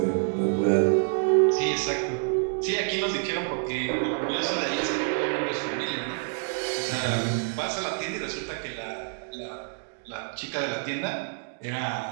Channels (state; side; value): silent; left; 60 dB below the other